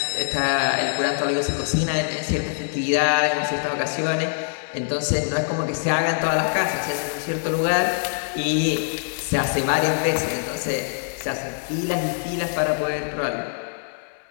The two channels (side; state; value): right; silent; 63 dB below the other